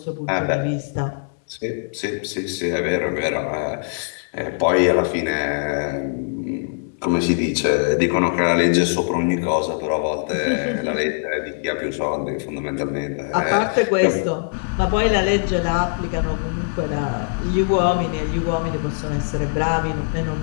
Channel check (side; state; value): right; silent; digital silence